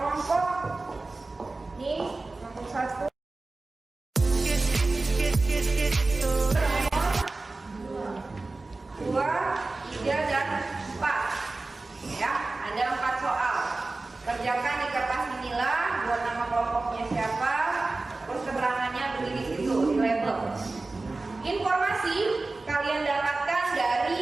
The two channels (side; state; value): left; quieter; 3.4 dB